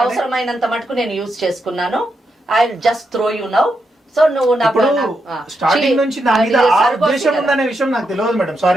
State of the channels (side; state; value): both; normal; correlation 0.83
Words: అవసరమైనంత మటుకు నేను యూజ్ చేసుకున్నాను. I just throw you now. So నువ్వు స్టార్టింగ్ నుంచి నా మీద ఆ ఉద్దేశం ఉందనే విషయం నాకు తెలియదు మేడం.